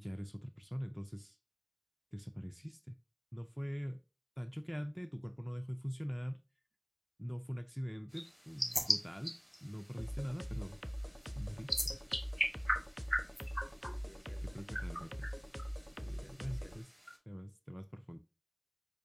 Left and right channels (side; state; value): both; identical; correlation 1.00